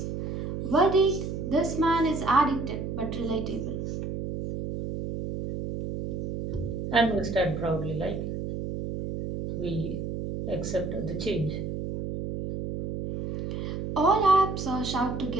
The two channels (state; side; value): noise; right; hum, 5 dB below the sound